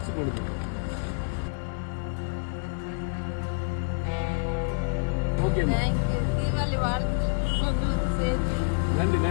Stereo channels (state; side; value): silent; right; digital silence